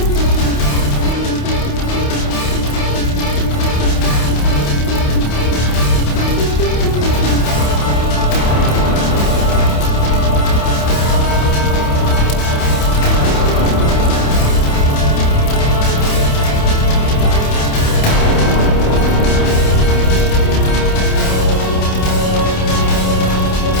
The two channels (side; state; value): right; late; 28 ms